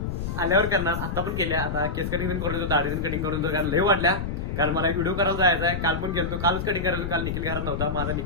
आल्यावर करणार. आता पण केल्या आता केस कटिंग पण करून दाढी पण कटिंग करून कारण लय वाटल्या कारण मला एक व्हिडिओ करायला जायचा आहे. काल पण गेलो कालच कटिंग करायचं काल निखिल घरात नव्हता माझा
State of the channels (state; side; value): noise; left; rumble, 4 dB below the sound